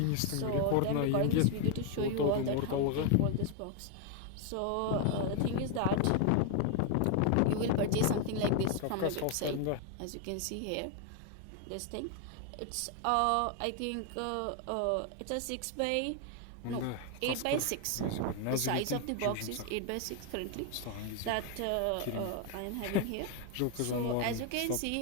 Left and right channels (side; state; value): both; different; correlation 0.01